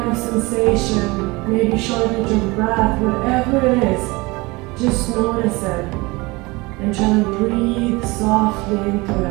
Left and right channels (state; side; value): quieter; left; 23.9 dB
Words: of sensation, maybe shortage of breath, whatever it is, just notice it. And try to breathe softly into